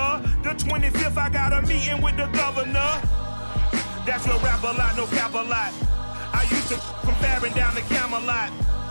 The 25th, I got a meeting with the governor. That's your Rap a Lot, no cap a lot. I used to from Farron down to Camelot.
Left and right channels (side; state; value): both; inverted; correlation -1.00